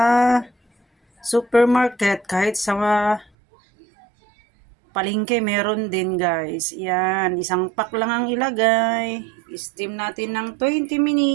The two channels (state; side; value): drops out; left; at 3.2 s